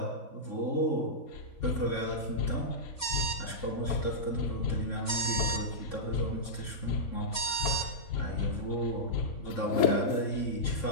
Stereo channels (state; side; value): late; right; 3.4 ms